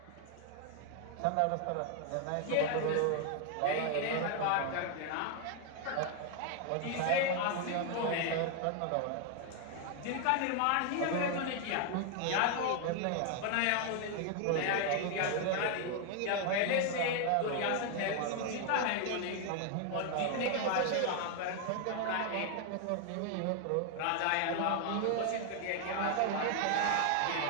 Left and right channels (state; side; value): different; both; correlation 0.00